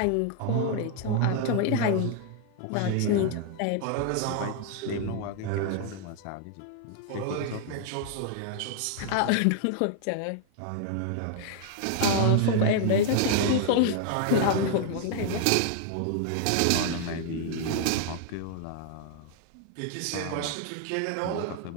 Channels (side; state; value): both; different; correlation 0.00